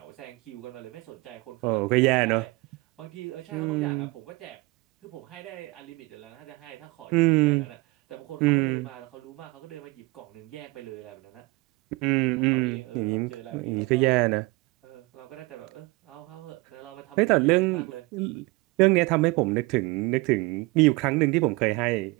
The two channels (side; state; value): left; quieter; 23.7 dB